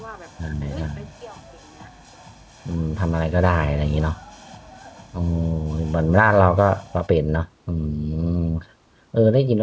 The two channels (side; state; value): both; identical; correlation 1.00